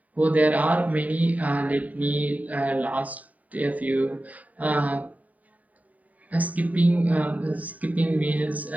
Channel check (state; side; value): late; left; 0.072 ms